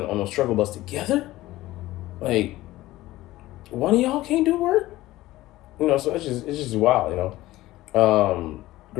on those struggle bus together? Like, one of y'all can't do work? So it's just wild,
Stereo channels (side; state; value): right; quieter; 16.8 dB